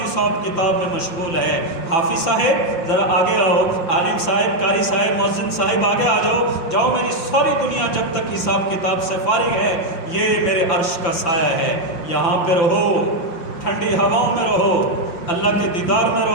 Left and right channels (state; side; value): late; right; 5.9 ms